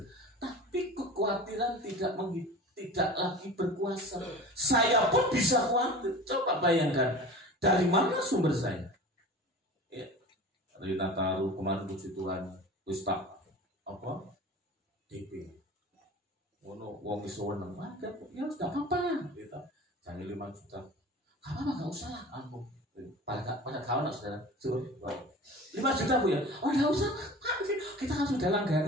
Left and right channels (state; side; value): normal; both; correlation 0.37